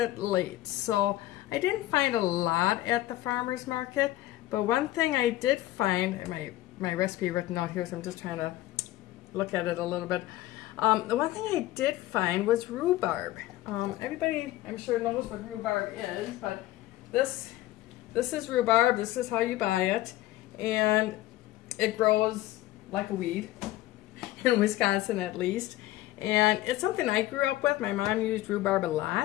late. So I didn't find a lot at the farmer's market, but one thing I did find, my recipe written out here, so I'm just trying to look at it a little bit. The one thing I did find was rhubarb. Everybody, I'm sure, knows what rhubarb is, but this is rhubarb. This is how you buy it, and it grows like a weed in Wisconsin, at least. And it's something I grew up with. My mom used rhubarb a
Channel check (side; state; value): right; quieter; 15.9 dB